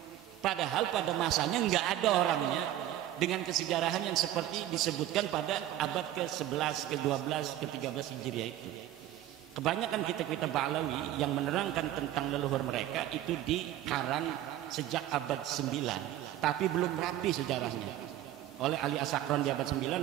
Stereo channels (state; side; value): quieter; left; 13.1 dB